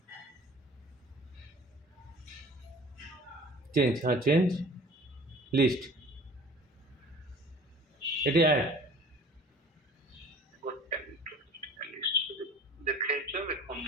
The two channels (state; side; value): normal; both; correlation 0.46